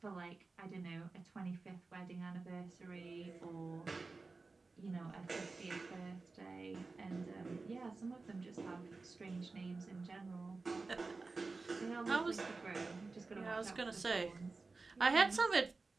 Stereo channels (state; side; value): quieter; left; 3.8 dB